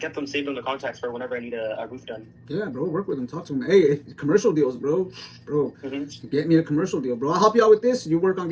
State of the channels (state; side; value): identical; both; correlation 1.00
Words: them saved on the contacts for whenever I need a roof done. Yeah, bro, work with them, talk to them. Hey, commercial deals, bro. Get me a commercial deal, bro. I'll help you out with this. You work on